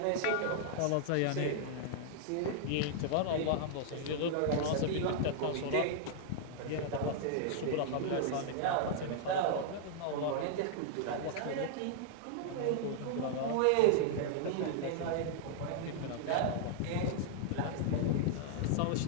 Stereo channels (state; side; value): different; both; correlation -0.01